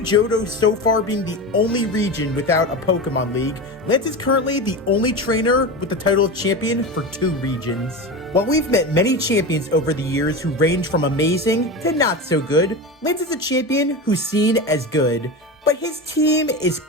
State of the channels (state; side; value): normal; both; correlation 0.24